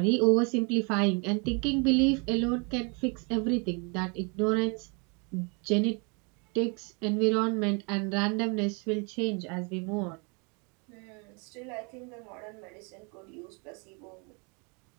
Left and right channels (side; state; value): left; quieter; 33.3 dB